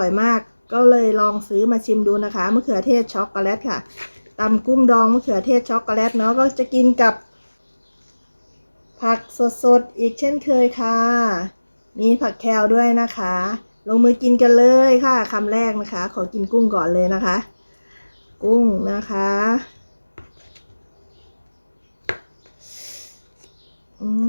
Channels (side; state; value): both; inverted; correlation -1.00